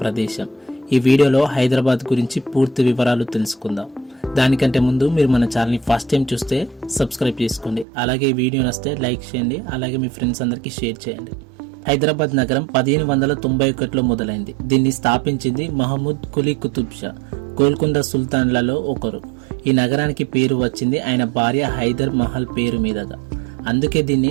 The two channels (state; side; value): drops out; left; at 7.9 s